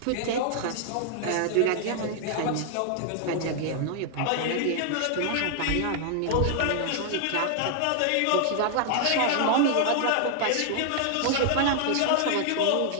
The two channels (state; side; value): different; both; correlation 0.00